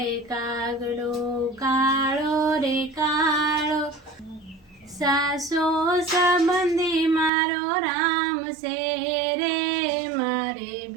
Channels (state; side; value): drops out; left; at 7.3 s